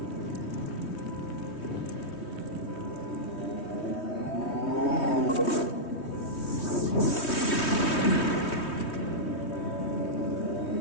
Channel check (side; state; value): right; late; 3.2 ms